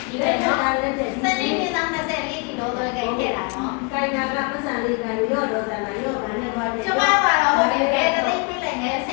ဒီလိုနော်စနေနေ့တောင်24ဒီလိုတော့ကြိုက်ခဲ့တာနော်ကိုင်နာကပတ်စံလေးကန်ရော့တော့စံနာရော့ပါနဲ့သွားတယ်ကျမကတော့ဟုတ်တယ်ပဲတသိန်းပေးလိုက်ငယ်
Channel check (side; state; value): right; quieter; 33.3 dB